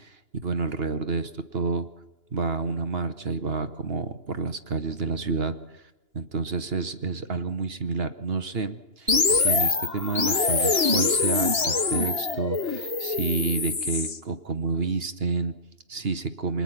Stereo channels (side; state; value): left; late; 2.9 ms